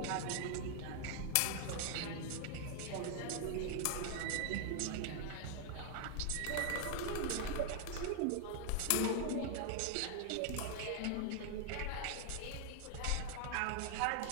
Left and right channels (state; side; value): different; both; correlation 0.00